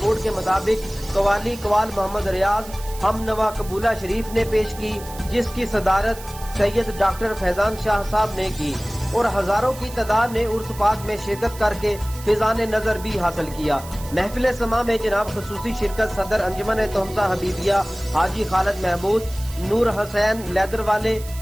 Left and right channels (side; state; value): right; noise; hiss, 16 dB below the sound